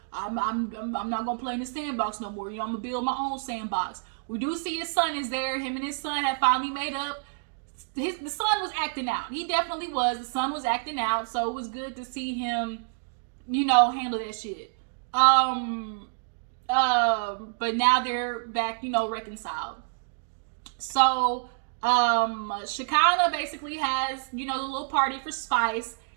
I'm not gonna play in the sandbox no more. You know, I'm gonna build my own sandbox. We do see his son is there. Him and his son have finally made up. The son was acting out. He definitely was. The son was acting out, so it was good to see him, you know, handle that shit. But now they're back, you know, reconciled. So, Shekinah basically has, you know, the little party for Spice.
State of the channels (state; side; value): silent; left; digital silence